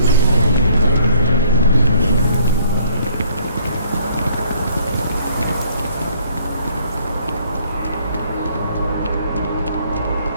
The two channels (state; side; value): inverted; both; correlation -0.62